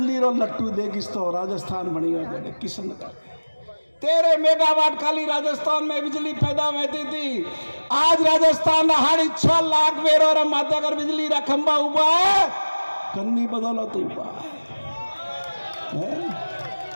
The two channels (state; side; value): inverted; both; correlation -1.00